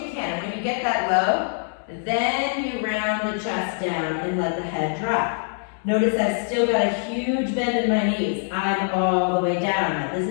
can, and when you get that low, then you round the chest down and let the head drop. Notice I've still got a huge bend in my knees. I'm all the way down.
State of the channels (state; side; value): silent; right; 63 dB below the other